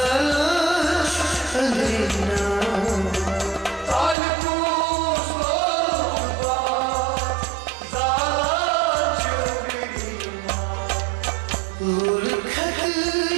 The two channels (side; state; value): left; drops out; at 4.2 s